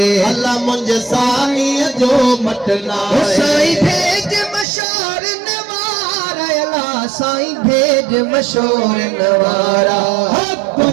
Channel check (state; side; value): drops out; left; at 4.7 s